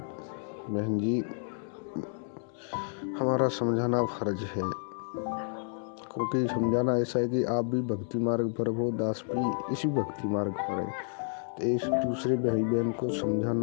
जी, हमारा समझाना फर्ज है। क्योंकि समझाना ऐसा है कि आप भी भक्ति मार्ग पर हो, दास भी इसी भक्ति मार्ग पर है, तो एक दूसरे भाई बहन को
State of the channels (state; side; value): silent; right; digital silence